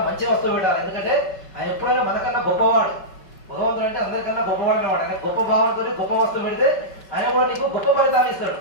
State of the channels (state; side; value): late; right; 5.3 ms